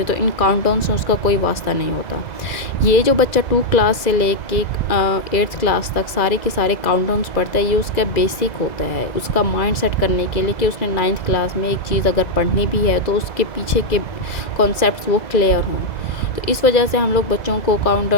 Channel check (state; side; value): late; right; 2.0 ms